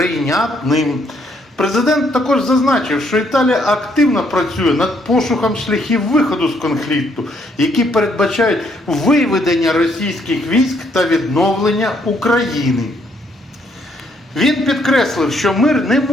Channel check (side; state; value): both; normal; correlation 0.70